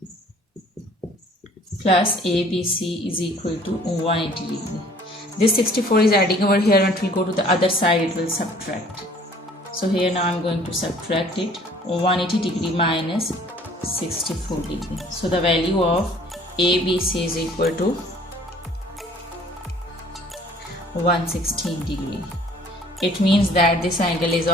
Plus ABC is equal to 180 degrees. This 64 is adding over here, and it will go to the other side, it will subtract. So here now I'm going to subtract it. 180 degree minus 64 degree. So the value of ABC is equal to 116 degree. It means that this angle is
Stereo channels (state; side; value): normal; both; correlation 0.54